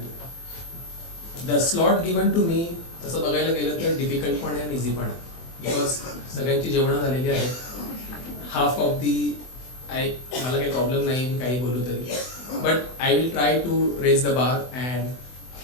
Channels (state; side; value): late; right; 24 ms